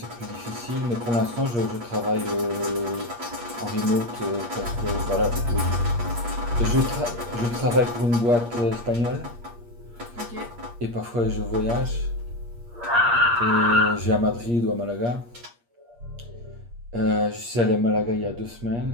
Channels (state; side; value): late; left; 8.5 ms